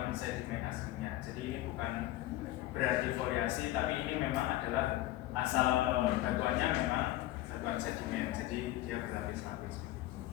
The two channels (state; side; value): quieter; right; 15.8 dB